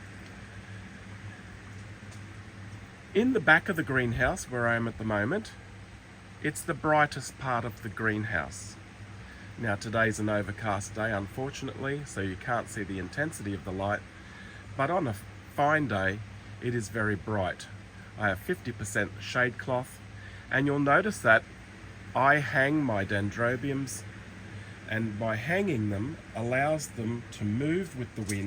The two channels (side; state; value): both; identical; correlation 1.00